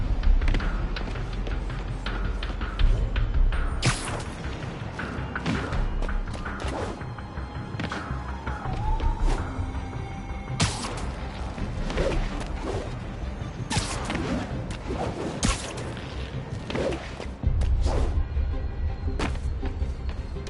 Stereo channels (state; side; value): identical; both; correlation 1.00